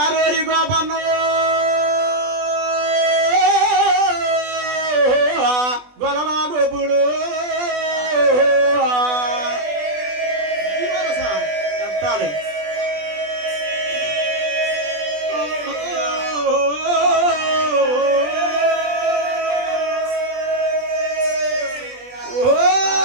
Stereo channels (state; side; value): late; left; 20 ms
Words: గోపన్న గొలలా గోపుడు చెప్తాడు